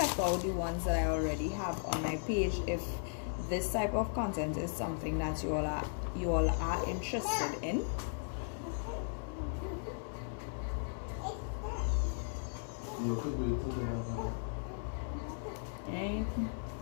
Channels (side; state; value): right; silent; 53 dB below the other